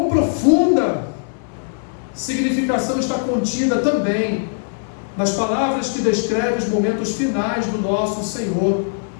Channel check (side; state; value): right; silent; 66 dB below the other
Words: profunda significação está contida também nas palavras que descrevem os momentos finais do nosso Senhor.